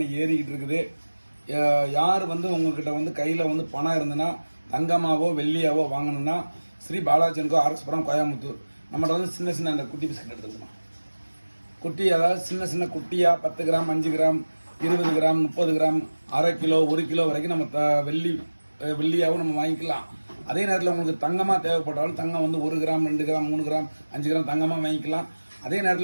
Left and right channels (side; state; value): both; inverted; correlation -1.00